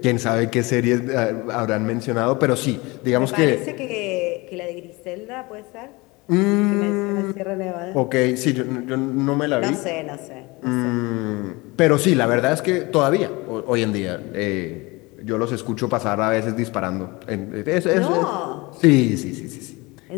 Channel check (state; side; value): quieter; right; 24.0 dB